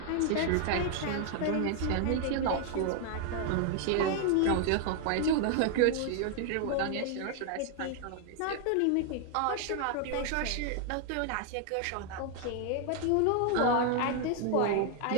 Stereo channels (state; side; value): different; both; correlation 0.00